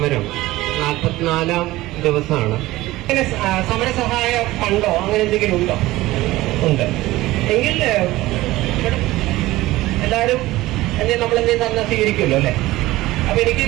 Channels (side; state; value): left; quieter; 17.7 dB